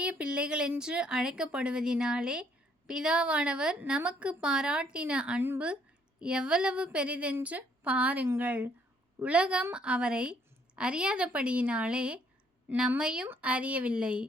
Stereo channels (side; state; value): both; normal; correlation 0.66